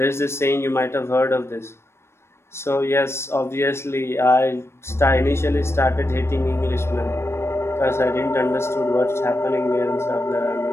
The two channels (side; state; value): right; late; 0.12 ms